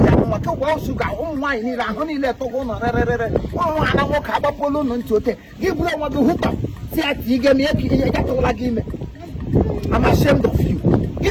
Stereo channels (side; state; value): both; identical; correlation 1.00